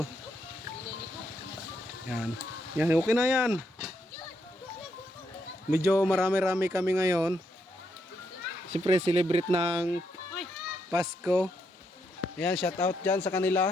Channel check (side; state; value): both; normal; correlation 0.78